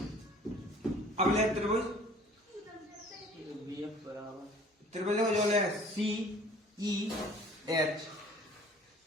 अब ले त्रिभुज त्रिभुज जो ले सी ई एच,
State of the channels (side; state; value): both; normal; correlation 0.51